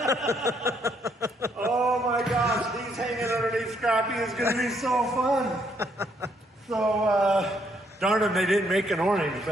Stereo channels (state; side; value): normal; both; correlation 0.71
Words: Oh my gosh, these hanging underneath Scrappy is going to be so fun. So, darn them, they didn't make an orange,